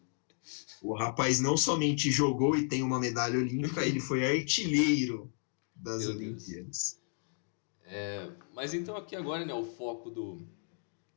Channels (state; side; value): silent; right; 55 dB below the other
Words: O rapaz não somente jogou e tem uma medalha olímpica, ele foi artilheiro das Olimpíadas. Mas então aqui agora, né, o foco